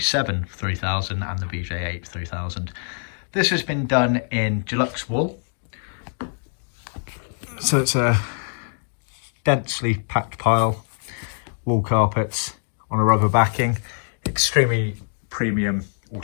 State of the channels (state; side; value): silent; right; digital silence